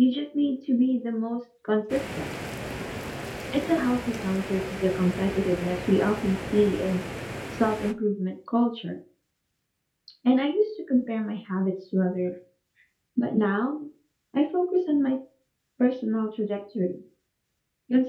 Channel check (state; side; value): identical; both; correlation 1.00